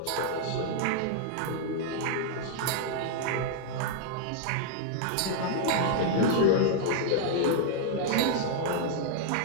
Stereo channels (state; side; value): different; both; correlation -0.01